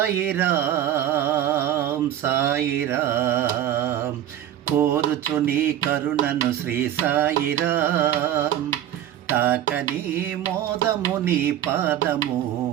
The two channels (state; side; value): quieter; left; 11.4 dB